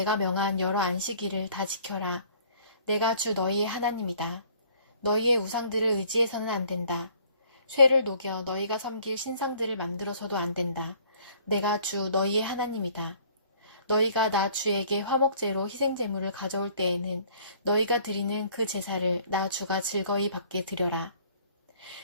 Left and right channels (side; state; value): both; inverted; correlation -0.57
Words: 명한 여러 안식일을 다 지켜라. 내가 주 너희의 하나님이다. 너희의 우상들을 의지해서는 안 된다. 쇠를 녹여 너희가 섬길 신상들을 만들어서도 안 된다. 내가 주 너희의 하나님이다. 너희가 나 주에게 화목제로 희생제물을 가져올 때에는 너희가 드리는 그 제사를 나 주가 즐거이 받게 드려라.